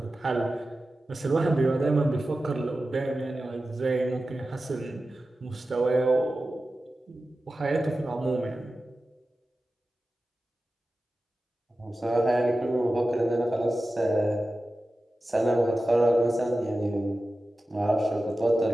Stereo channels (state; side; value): normal; both; correlation 0.94